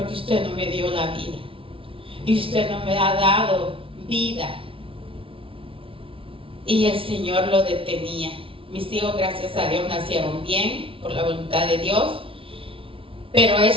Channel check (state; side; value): late; left; 0.26 ms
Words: usted no me dio la vida. Y usted no me ha dado vida. Y el Señor lo detenía. Mis hijos, gracias a Dios, nacieron bien, por la voluntad de Dios. Pero